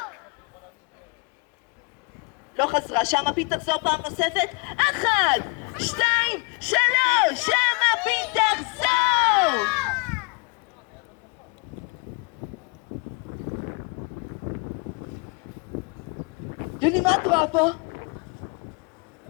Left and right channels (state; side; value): quieter; right; 30.1 dB